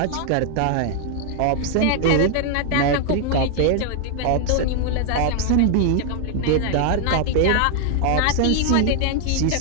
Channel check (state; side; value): different; both; correlation 0.00